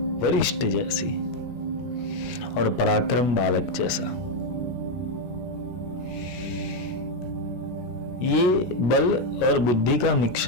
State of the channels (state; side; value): late; right; 17 ms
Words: वरिष्ठ जैसी, और पराक्रम बालक जैसा। ये बल और बुद्धि का